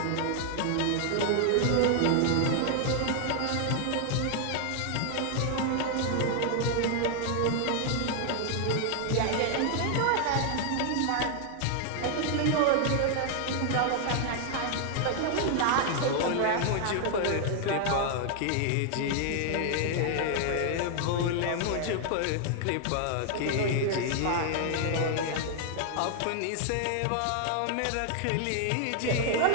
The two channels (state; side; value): different; both; correlation 0.00